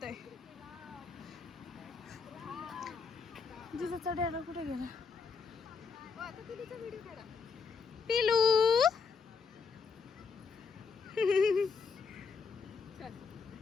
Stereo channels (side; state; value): right; quieter; 5.3 dB